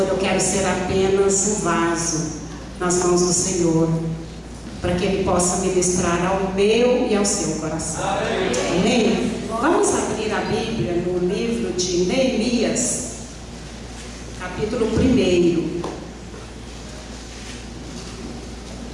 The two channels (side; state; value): both; identical; correlation 1.00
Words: eu quero ser apenas um vaso nas mãos do Senhor, para que Ele possa ministrar ao meu e ao seu coração. Amém? Vamos abrir a Bíblia no livro de Neemias, capítulo 1.